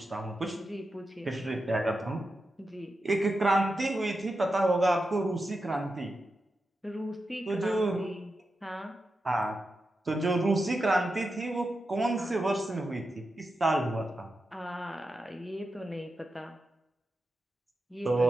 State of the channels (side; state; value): both; normal; correlation 0.89